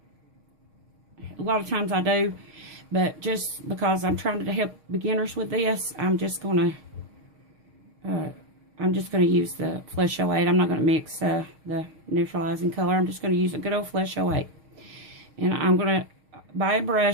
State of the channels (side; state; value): left; late; 6.4 ms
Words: A lot of times I do. But just because I'm trying to help beginners with this, I'm just going to use the Flesh 08. I'm not going to mix the neutralizing color. I'm just going to use a good old Flesh 08. And I'm going to buy a